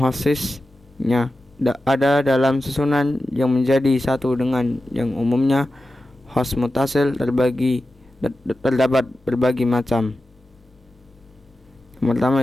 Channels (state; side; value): normal; both; correlation 0.93